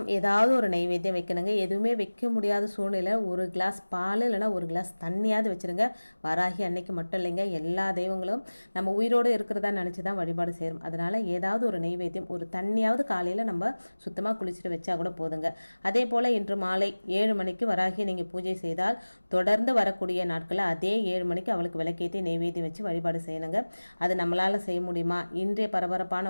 ஏதாவது ஒரு நைவேத்தியம் வைக்கணுங்க. எதுவுமே வைக்க முடியாத சூழ்நிலை ஒரு கிளாஸ் பால் இல்லைனா ஒரு கிளாஸ் தண்ணியாவது வச்சுருங்க. வராகி அன்னைக்கு மட்டும் இல்லைங்க, எல்லா தெய்வங்களும் நம்ம உயிரோடு இருக்கிறதா நினச்சி தான் வழிபாடு செய்கிறோம். அதனால் ஏதாவது ஒரு நைவேத்தியம், ஒரு தண்ணியாவது காலையில் நம்ம சுத்தமாக குளிச்சுட்டு வச்சா கூட போதுங்க. அதே போல் இன்று மாலை 7 மணிக்கு வராகி நீங்கள் பூஜை செய்தால் தொடர்ந்து வரக்கூடிய நாட்களில் அதே 7 மணிக்கு அவளுக்கு விளக்கேற்றி நைவேத்தியம் வச்சு வழிபாடு செய்யணுங்க. அது நம்மளால் செய்ய முடியுமா? இன்றைய பரபரப்பான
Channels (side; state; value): both; inverted; correlation -1.00